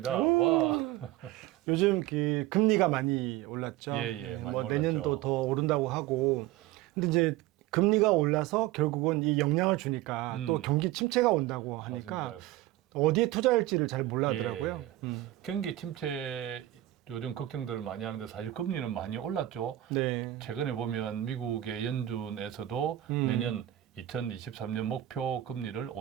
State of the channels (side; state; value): left; quieter; 14.9 dB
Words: 와. 요즘 그 금리가 많이 올랐죠. 예, 많이 뭐 올랐죠. 내년도 더 오른다고 하고. 근데 이제 금리가 올라서 결국은 이 영향을 주니까 또 경기 침체가 온다고 하니까 맞습니다. 어디에 투자할지를 잘 몰라더라고요. 예. 경기 침체 요즘 걱정들을 많이 하는데 사실 금리는 많이 올랐죠. 네. 최근에 보면 미국의 연준에서도 내년 2023년 목표 금리를